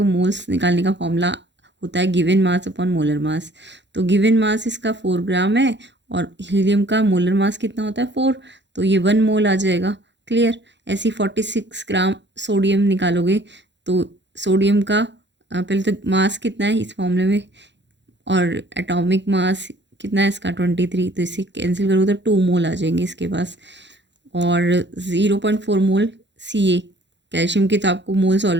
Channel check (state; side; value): late; left; 0.52 ms